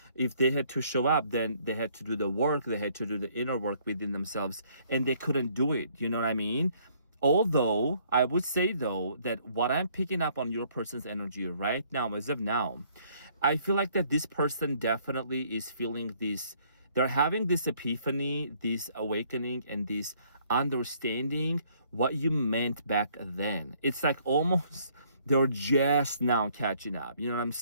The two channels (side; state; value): both; inverted; correlation -0.63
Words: if they had to show up, then they had to do the work, they had to do the inner work within themselves, and they couldn't do it. You know what I mean? Although I would say though that what I'm picking up on your person's energy right now, as of now, I feel like that this person definitely is feeling this, they're having this epiphany, this awakening, and this understanding what you meant back then. It's like almost they're just now catching up. You know what I'm